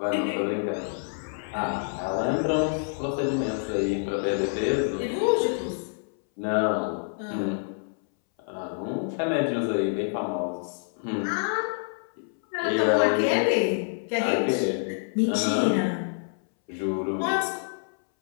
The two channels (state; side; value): silent; right; 60 dB below the other